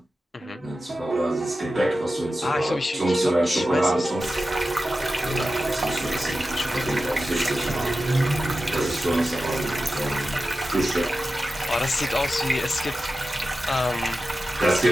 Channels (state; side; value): normal; both; correlation 0.93